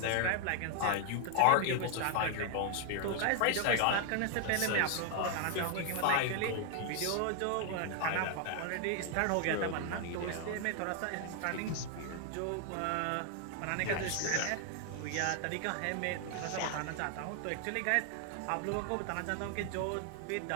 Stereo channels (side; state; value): both; different; correlation 0.00